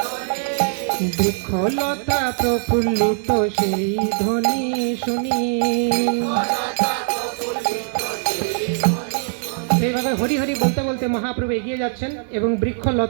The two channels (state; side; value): silent; left; digital silence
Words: বৃক্ষলতা প্রফুল্লিত সেই ধ্বনি শুনি। এইভাবে হরি হরি বলতে বলতে মহাপ্রভু এগিয়ে যাচ্ছেন এবং